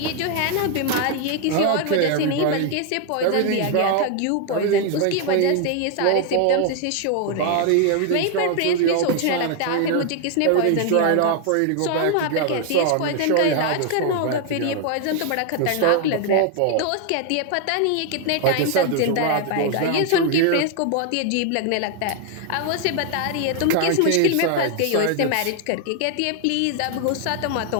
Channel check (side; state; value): both; different; correlation 0.00